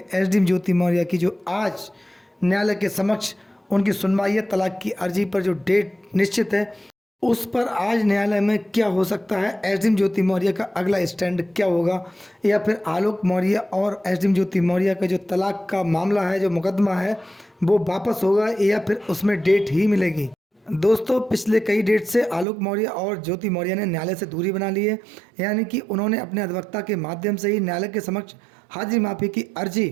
एसडीएम ज्योति मौर्य की, जो आज न्यायालय के समक्ष उनकी सुनवाई है। तलाक की अर्जी पर जो डेट निश्चित है उस पर आज न्यायालय में क्या हो सकता है, एसडीएम ज्योति मौर्य का अगला स्टैंड क्या होगा, या फिर आलोक मौर्य और एसडीएम ज्योति मौर्य का जो तलाक का मामला है, जो मुकदमा है, वो वापस होगा या फिर उसमें डेट ही मिलेगी। दोस्तों, पिछले कई डेट से आलोक मौर्य और ज्योति मौर्य ने न्यायालय से दूरी बना ली है, यानी कि उन्होंने अपने अधिवक्ता के माध्यम से ही न्यायालय के समक्ष हाजिरी माफी की अर्जी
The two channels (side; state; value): left; drops out; at 22.5 s